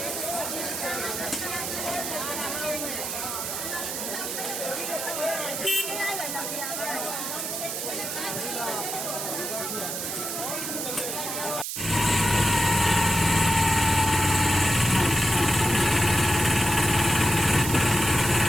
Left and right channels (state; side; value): noise; right; hiss, 4 dB below the sound